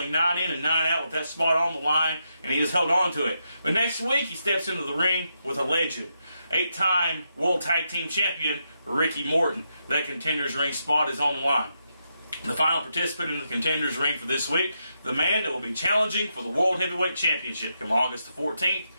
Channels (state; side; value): inverted; both; correlation -0.83